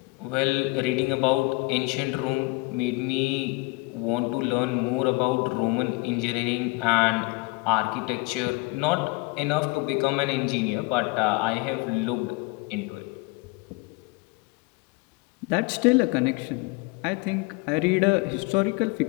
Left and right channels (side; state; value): right; quieter; 24.9 dB